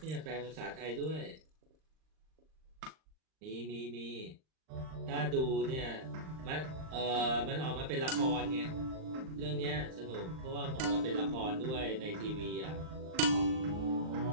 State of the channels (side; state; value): left; late; 39 ms